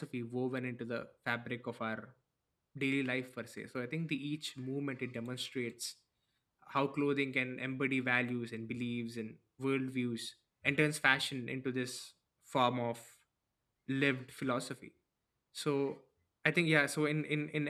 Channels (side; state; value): both; identical; correlation 1.00